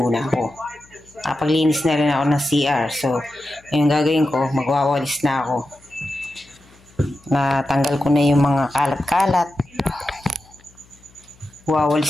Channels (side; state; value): left; noise; hum, 29 dB below the sound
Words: ako. Nakapaglinis na rin ako ng CR. So, yung gagawin ko, magwawalis na ako. Natanggal ko na yung mga kalat-kalat.